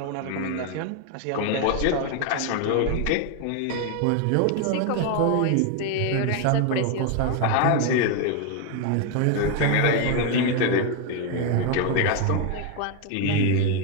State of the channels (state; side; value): different; both; correlation 0.01